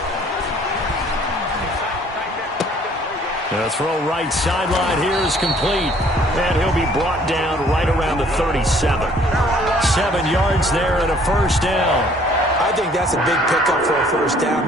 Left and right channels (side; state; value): both; normal; correlation 0.58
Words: The throw right sideline here is complete. And he'll be brought down right around the 37. 7 yards there and a first down. I think that's a big pickup for a first down